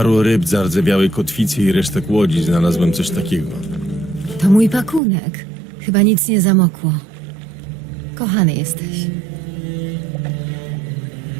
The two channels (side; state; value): left; drops out; at 5.0 s